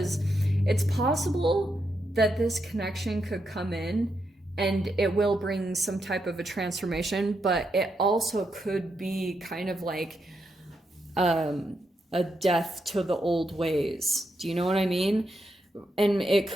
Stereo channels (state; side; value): normal; both; correlation 0.82